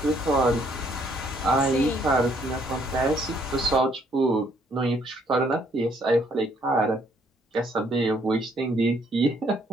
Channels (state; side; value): normal; both; correlation 0.67